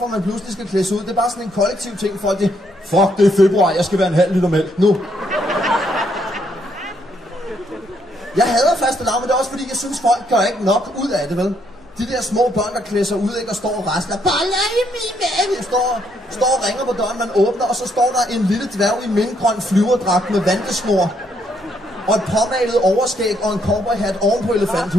man pludselig skal klædes ud. Det er bare sådan en kollektiv ting. Folk det, fuck, det er februar. Jeg skal være en halv liter mælk nu. Jeg hader fastelavn, men det er også fordi, jeg synes, folk gør ikke nok ud af det, vel? De der små børn, der klæder sig ud, ikke, og står og rasler. Boller i min mave! Står og ringer på døren, man åbner, og så står der en lille dværg i mintgrøn flyverdragt med vandesnor. Og et påmalet overskæg og en cowboyhat oven på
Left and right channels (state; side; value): normal; both; correlation 0.72